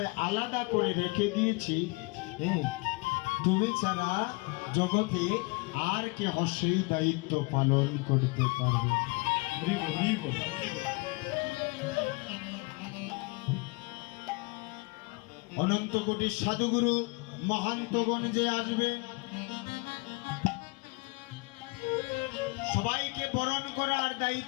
আলাদা করে রেখে দিয়েছি, হ্যাঁ, তুমি ছাড়া জগতে আর কেহ সেই দায়িত্ব পালন করতে পারবে। হরিবল হরিবল অনন্ত কোটি সাধুগুরু মহান্তগণ যে আসবে, সবাইকে বরণ করার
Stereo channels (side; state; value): right; quieter; 27.7 dB